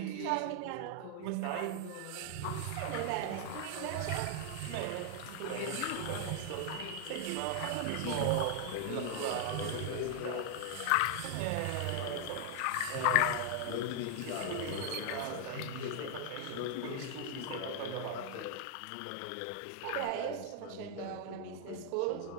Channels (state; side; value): different; both; correlation 0.00